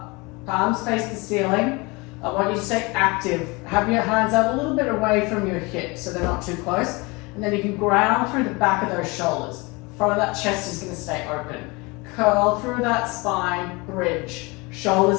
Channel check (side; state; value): right; quieter; 26.0 dB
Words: Palms face the ceiling. I want you to stay active. Have your hands out a little bit away from your hips so they're not too close. And then you can ground through the back of those shoulders. Front of that chest is going to stay open. Curl through that spine, bridge.